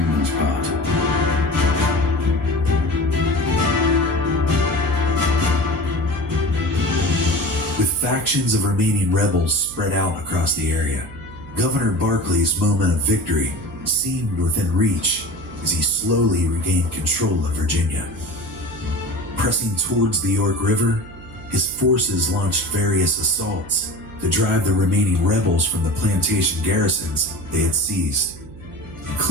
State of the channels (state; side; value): noise; right; hum, 17 dB below the sound